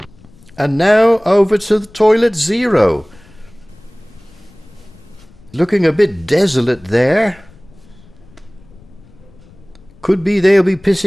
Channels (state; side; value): noise; left; rumble, 25 dB below the sound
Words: And now over to the toilet zero. Looking a bit desolate there. Could be they'll be